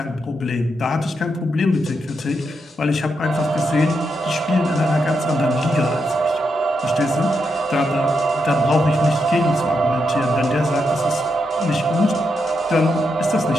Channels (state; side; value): normal; both; correlation 0.82